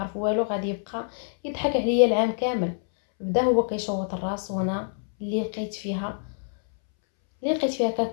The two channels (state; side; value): silent; right; 61 dB below the other